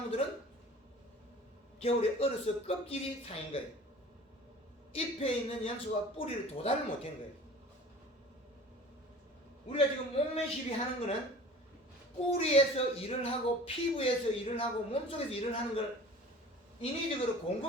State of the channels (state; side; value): normal; both; correlation 0.43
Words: 겨울에 얼어서 껍질이 상인 거예요. 잎에 있는 영양소가 뿌리를 도달을 못한 거예요. 우리가 지금 몸매 시비하는 거는 뿌리에서 일을 하고 피부에서 일을 하고 몸속에서 일을 하는 걸 인위적으로